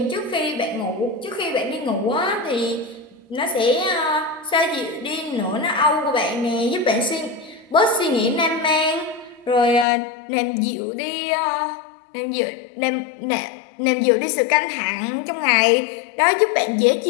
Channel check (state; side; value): drops out; right; at 9.9 s